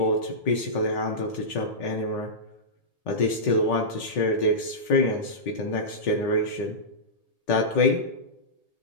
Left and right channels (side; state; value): right; late; 1.8 ms